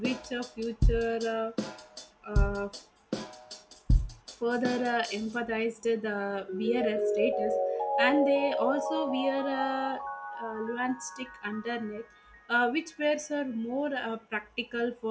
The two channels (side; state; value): both; identical; correlation 1.00